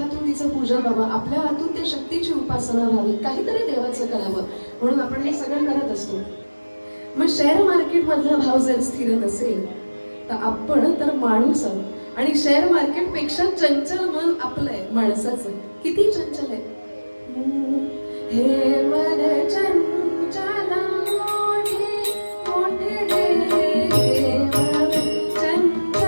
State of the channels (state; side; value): inverted; both; correlation -1.00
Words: तिचं पूजन व्हावं, आपल्या हातून त्या शक्तीची उपासना व्हावी, काहीतरी देवाचं करावं, म्हणून आपण हे सगळं करत असतो. मग शेअर मार्केट मधला भाव जर स्थिर नसेल तर आपण तर माणूस आहोत, आणि शेअर मार्केट पेक्षा चंचल मन आपलंय माणसाचं. किती चंचल आहे हे मन चंचल मोठे मोठे देव